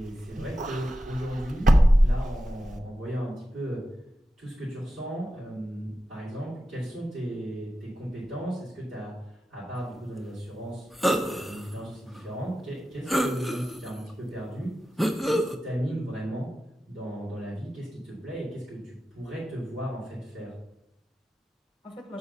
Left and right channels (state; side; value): normal; both; correlation 0.92